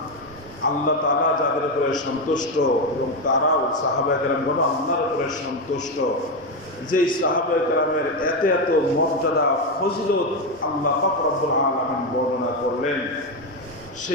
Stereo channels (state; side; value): normal; both; correlation 0.10